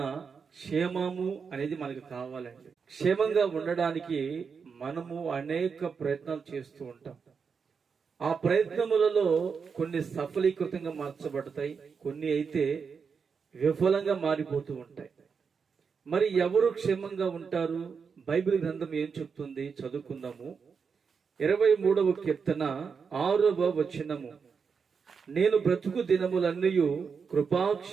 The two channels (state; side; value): quieter; left; 5.8 dB